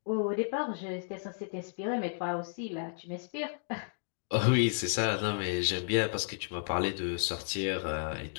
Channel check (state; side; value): silent; right; digital silence